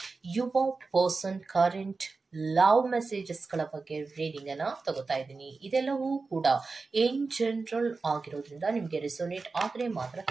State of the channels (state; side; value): quieter; left; 4.1 dB